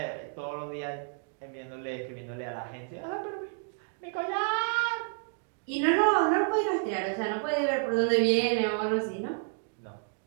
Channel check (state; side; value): silent; left; 57 dB below the other